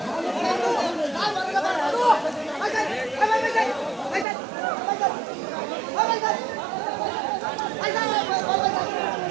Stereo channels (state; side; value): drops out; left; at 4.2 s